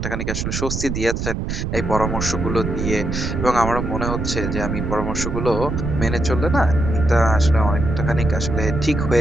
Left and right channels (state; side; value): noise; right; rumble, 3 dB below the sound